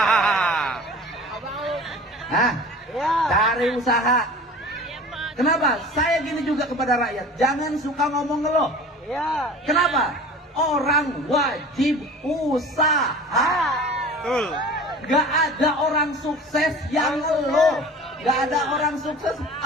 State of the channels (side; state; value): both; normal; correlation 0.40